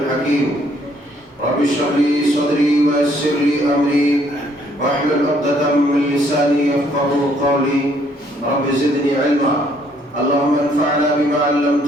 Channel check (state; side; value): normal; both; correlation 0.66